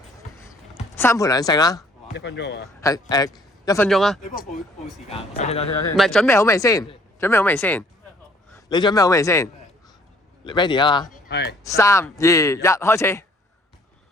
3盤2勝啦。1分鐘啊嘛。係1分鐘啊。你幫我報時間。等先。唔係準備好未先？你準備好未先 ？Ready 啊嘛？係。3、2、1，開始。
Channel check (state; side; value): normal; both; correlation 0.60